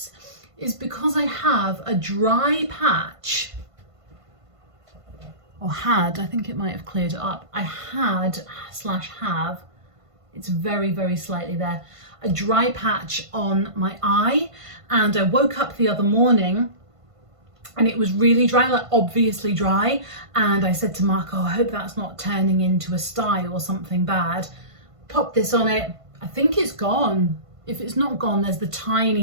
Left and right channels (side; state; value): left; late; 1.5 ms